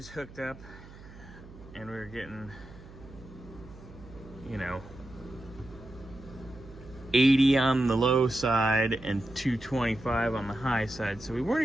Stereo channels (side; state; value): right; noise; hum, 18 dB below the sound